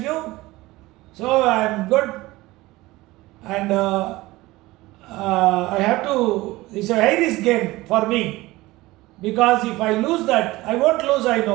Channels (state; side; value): quieter; left; 19.3 dB